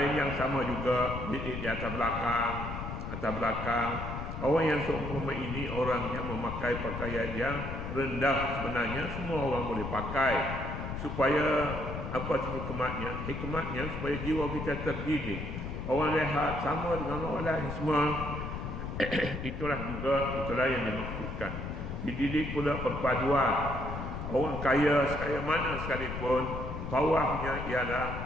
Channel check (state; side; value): noise; left; rumble, 6 dB below the sound